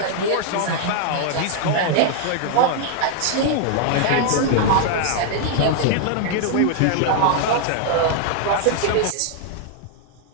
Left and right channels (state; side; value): different; both; correlation 0.00